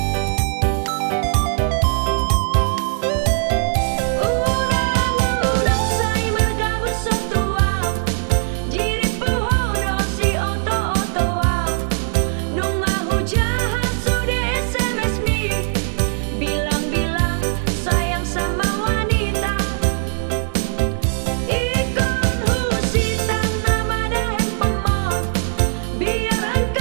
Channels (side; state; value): left; silent; digital silence